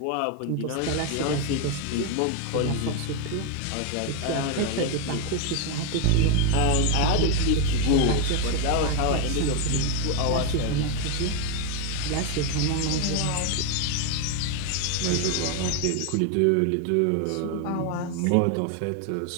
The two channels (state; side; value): different; both; correlation 0.02